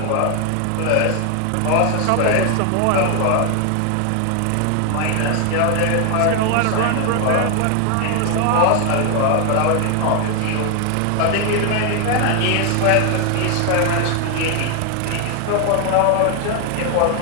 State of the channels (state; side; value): different; both; correlation 0.01